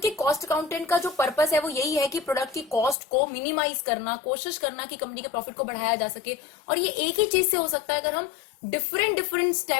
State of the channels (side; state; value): right; drops out; at 3.0 s